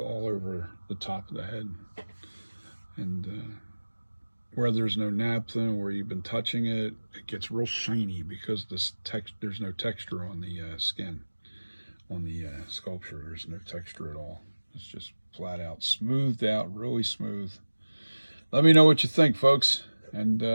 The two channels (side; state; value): both; inverted; correlation -1.00